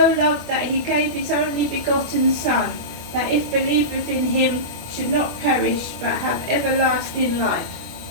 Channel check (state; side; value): late; left; 24 ms